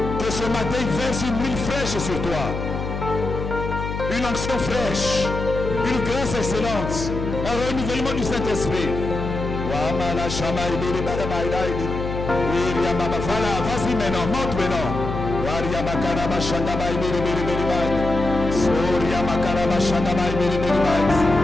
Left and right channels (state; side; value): noise; left; hum, 5 dB below the sound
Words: Que ce matin il verse une huile fraîche sur toi. Une onction fraîche. Une grâce excellente. Un renouvellement du Saint-Esprit. Voilà, vas-y maintenant, monte maintenant. Soria makaraba shandabai beri beri bai. Soria makaraba